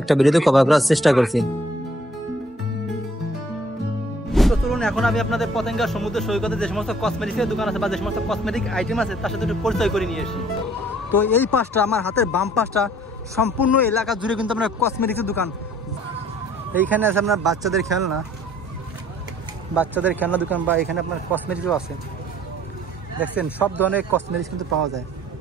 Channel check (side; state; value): both; normal; correlation 0.57